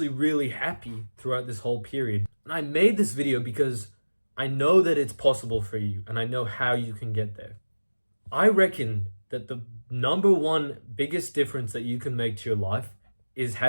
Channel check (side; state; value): both; inverted; correlation -1.00